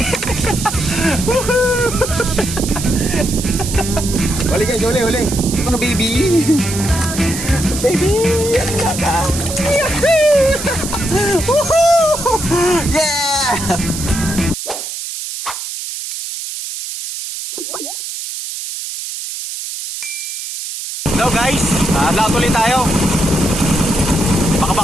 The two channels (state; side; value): noise; right; hiss, 7 dB below the sound